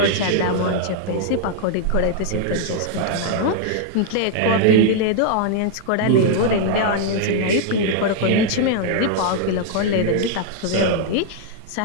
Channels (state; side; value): different; both; correlation 0.00